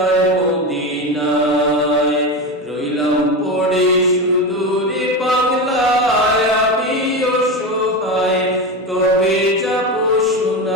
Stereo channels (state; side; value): normal; both; correlation 0.20